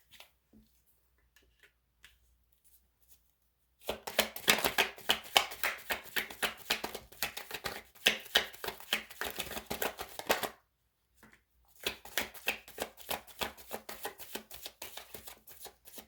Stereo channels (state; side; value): identical; both; correlation 1.00